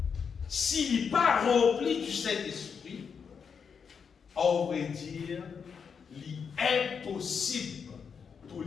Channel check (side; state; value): right; quieter; 6.4 dB